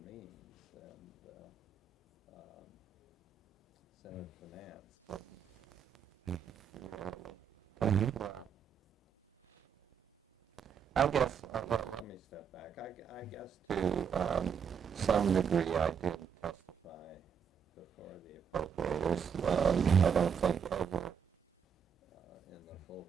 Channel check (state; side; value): quieter; left; 7.2 dB